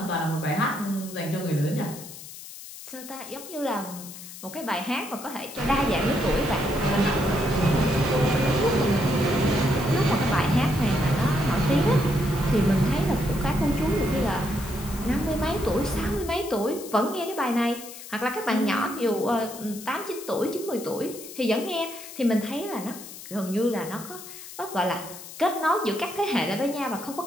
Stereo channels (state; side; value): noise; left; hiss, 14 dB below the sound